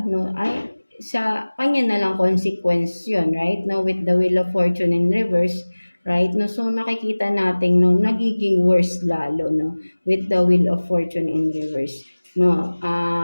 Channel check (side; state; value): both; inverted; correlation -1.00